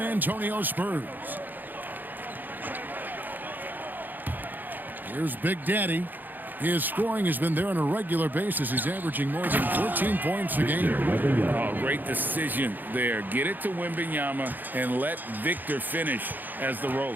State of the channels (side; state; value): left; late; 0.087 ms